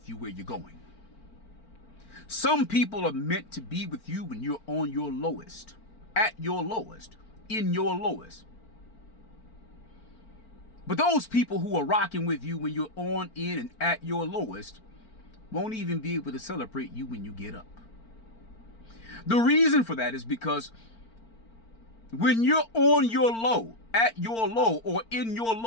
you where you're going. Some people are meant to be with you when you're on your lowest, at your lowest, in your lowest. But those people who are rocking with you when you're on, in, and at your lowest won't even be able to celebrate you when you get up. The reason for that is because when you're on your low, at your low, or in your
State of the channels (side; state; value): right; late; 4.4 ms